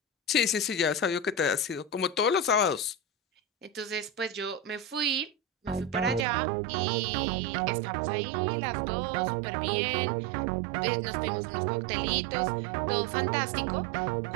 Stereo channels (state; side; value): drops out; left; at 6.2 s